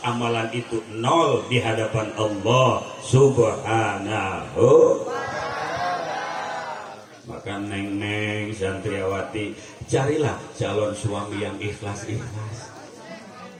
amalan itu nol di hadapan Allah Subhanahu. Maka neng-neng santriawati, carilah calon suami yang ikhlas-ikhlas.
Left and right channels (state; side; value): identical; both; correlation 1.00